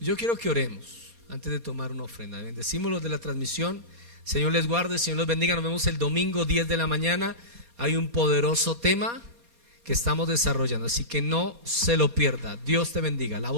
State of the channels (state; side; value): late; left; 4.2 ms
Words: Yo quiero que oremos antes de tomar una ofrenda. Bendecimos los de la transmisión. Señor les guarde, Señor los bendiga. Nos vemos el domingo 10 de la mañana. Hay un poderoso tema que estamos desarrollando, así que no se lo pierda. Dios te bendiga. La